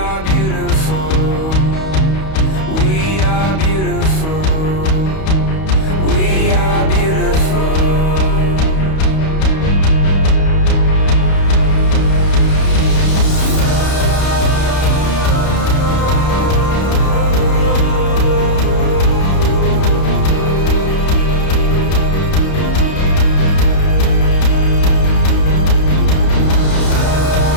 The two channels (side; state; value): right; late; 31 ms